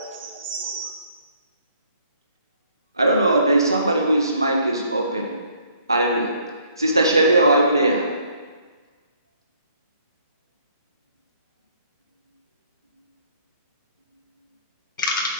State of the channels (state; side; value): inverted; both; correlation -0.63